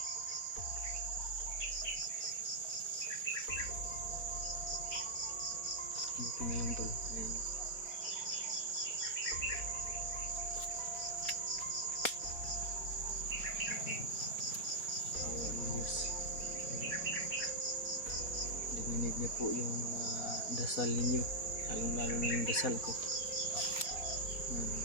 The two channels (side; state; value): right; late; 4.1 ms